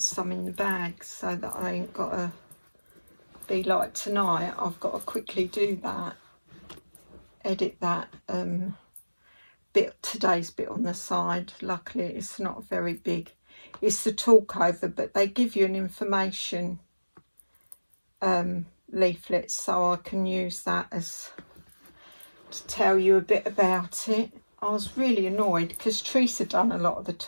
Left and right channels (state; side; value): inverted; both; correlation -1.00